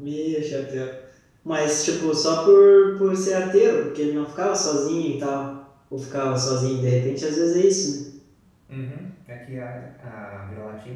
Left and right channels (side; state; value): both; identical; correlation 1.00